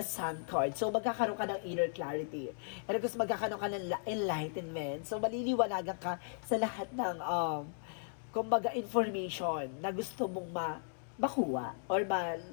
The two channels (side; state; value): right; silent; digital silence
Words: Sun card. So, magkakaroon ka ng inner clarity. And of course, magkakaroon ka ng enlightenment. So, maliliwanagan ka sa lahat ng kumbaga information na gusto mong makuha or